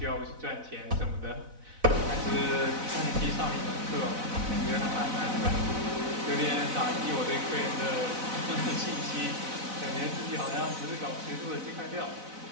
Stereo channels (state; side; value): late; left; 4.0 ms